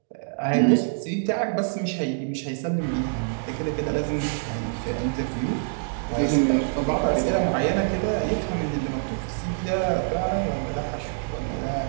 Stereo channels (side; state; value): left; silent; digital silence